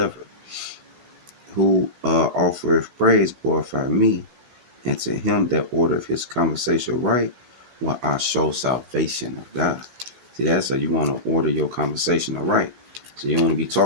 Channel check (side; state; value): left; late; 16 ms